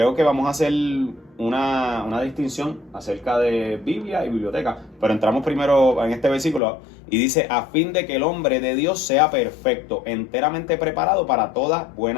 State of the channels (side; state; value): right; drops out; at 6.6 s